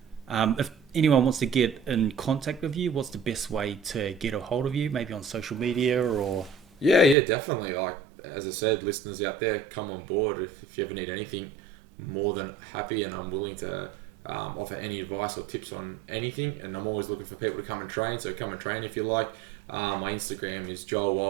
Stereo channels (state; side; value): drops out; left; at 7.2 s